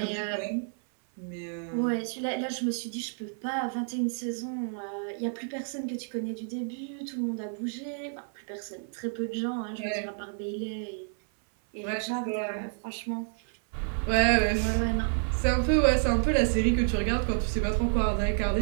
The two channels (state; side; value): silent; left; 58 dB below the other